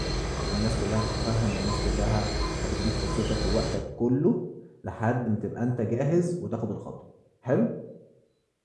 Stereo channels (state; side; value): identical; both; correlation 1.00